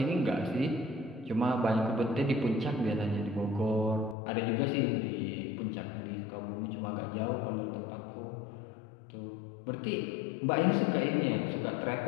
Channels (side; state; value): right; drops out; at 4.2 s